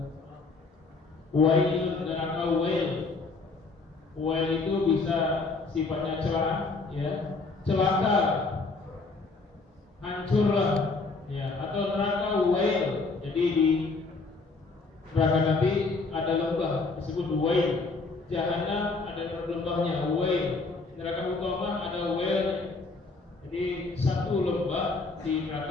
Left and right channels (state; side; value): quieter; right; 3.8 dB